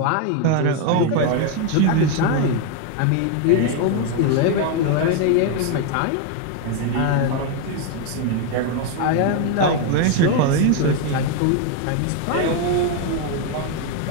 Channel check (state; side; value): different; both; correlation 0.01